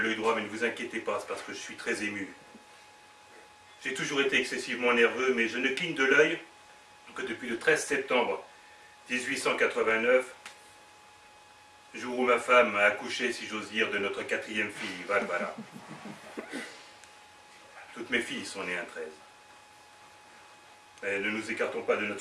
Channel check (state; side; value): identical; both; correlation 1.00